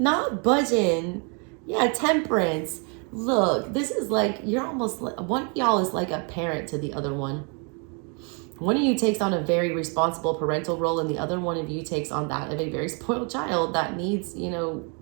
budging. Yeah, temperance. Look, this is like, you're almost like, one of y'all is like a parent to the other one. One of you takes on a very responsible parental role, and the other one of you takes on that of a very spoiled child that needs, you know,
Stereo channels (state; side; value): quieter; left; 36.2 dB